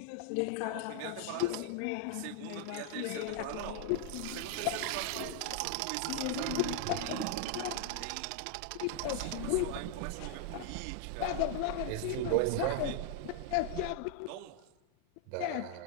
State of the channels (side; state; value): both; different; correlation 0.00